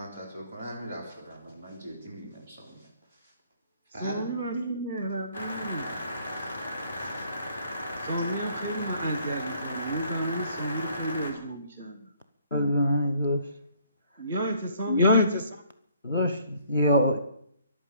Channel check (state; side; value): inverted; both; correlation -0.61